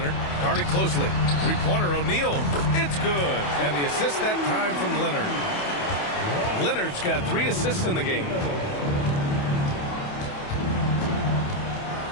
guarded closely. Three-pointer, O'Neal. It's good. And the assist that time from Leonard. Leonard's got 3 assists in the game.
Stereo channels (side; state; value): right; late; 28 ms